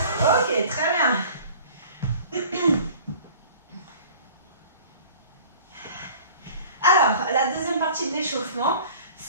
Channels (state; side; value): inverted; both; correlation -0.46